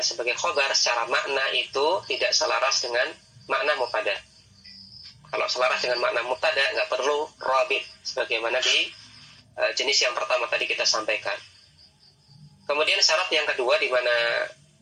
sebagai khobar secara makna itu tidak selaras dengan makna mubtada. Kalau selaras dengan makna mubtada nggak perlu robit, sebagaimana di jenis yang pertama tadi kita sampaikan. Kemudian syarat yang kedua di mana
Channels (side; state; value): both; identical; correlation 1.00